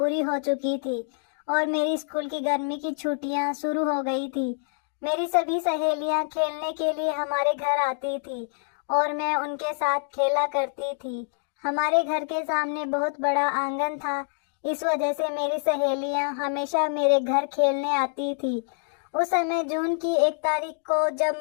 हो चुकी थी और मेरी स्कूल की गर्मी की छुट्टियां शुरू हो गई थी। मेरी सभी सहेलियां खेलने के लिए हमारे घर आती थी और मैं उनके साथ खेला करती थी। हमारे घर के सामने बहुत बड़ा आंगन था, इस वजह से मेरी सहेलियां हमेशा मेरे घर खेलने आती थी। उस समय जून की 1 तारीख को जब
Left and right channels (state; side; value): silent; right; digital silence